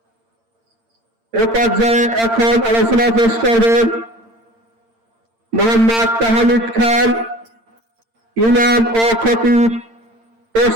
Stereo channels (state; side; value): late; left; 8.8 ms